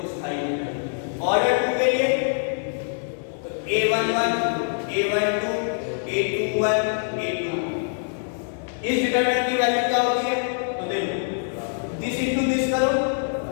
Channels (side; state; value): right; silent; digital silence